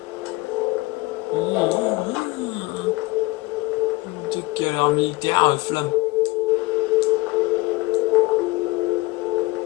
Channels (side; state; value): right; quieter; 21.1 dB